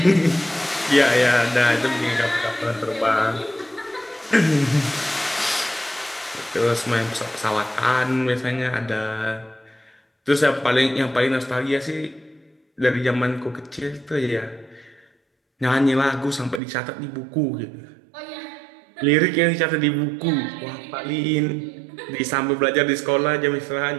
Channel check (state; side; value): drops out; left; at 16.6 s